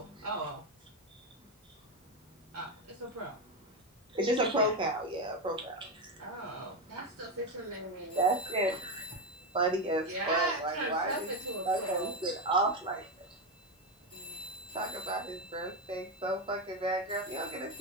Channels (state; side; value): normal; both; correlation 0.10